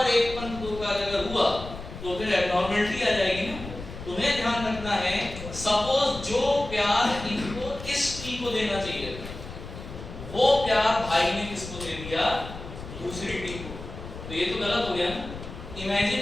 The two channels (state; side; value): noise; left; rumble, 11 dB below the sound